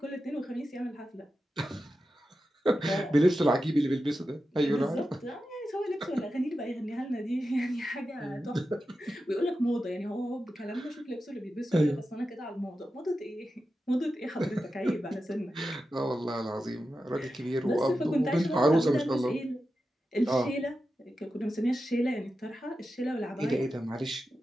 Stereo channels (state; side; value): normal; both; correlation 0.91